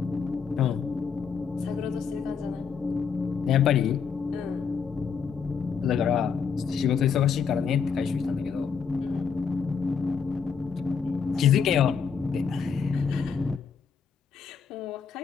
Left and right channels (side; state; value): right; quieter; 6.3 dB